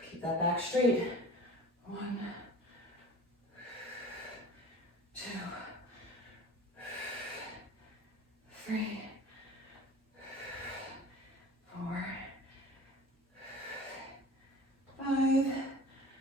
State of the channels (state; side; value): normal; both; correlation 0.41